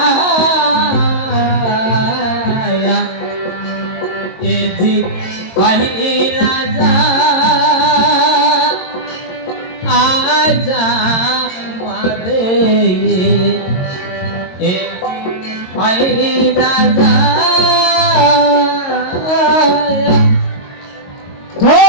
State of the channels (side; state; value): right; late; 22 ms